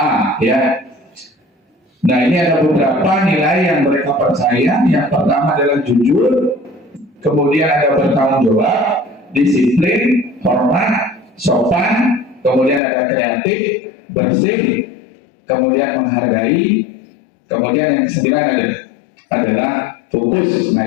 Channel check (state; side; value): drops out; right; at 12.8 s